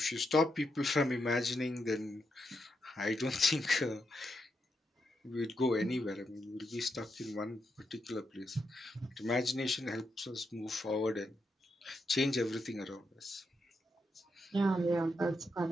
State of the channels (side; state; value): both; normal; correlation 0.82